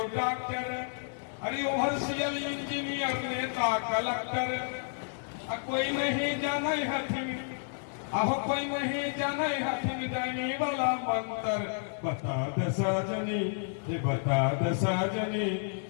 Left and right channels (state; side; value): silent; right; digital silence